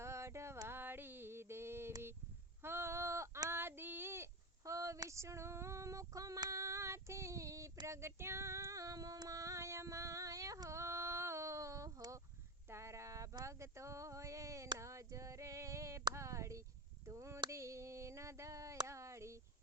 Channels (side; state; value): both; normal; correlation 0.20